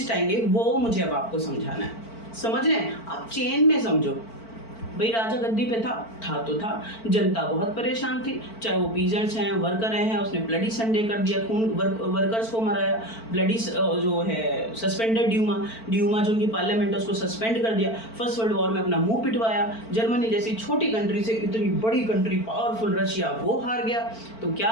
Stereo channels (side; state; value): right; late; 4.5 ms